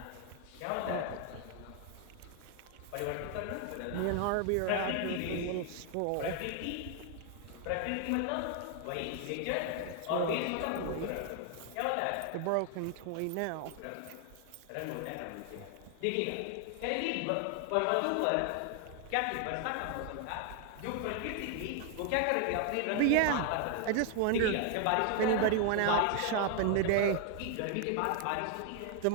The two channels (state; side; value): different; both; correlation 0.00